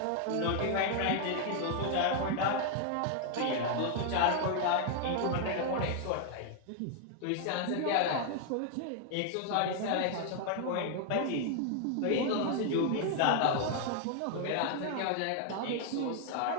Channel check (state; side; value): different; both; correlation 0.00